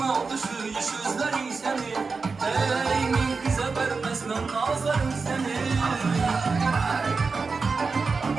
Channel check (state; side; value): quieter; left; 4.5 dB